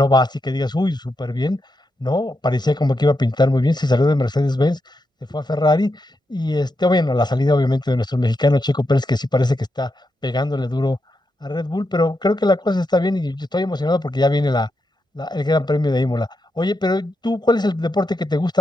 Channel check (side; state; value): both; normal; correlation 0.85